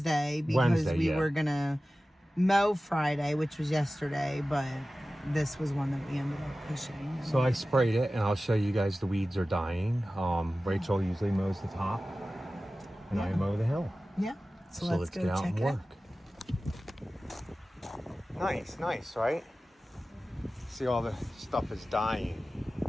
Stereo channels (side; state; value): both; normal; correlation 0.96